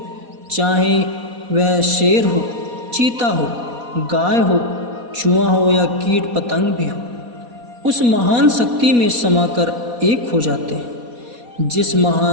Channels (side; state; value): left; late; 4.1 ms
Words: चाहे वह शेर हो, चीता हो, गाय हो, चूहा हो या कीट पतंग भी हो, उस महान शक्ति में समाकर एक हो जाते हैं। जिस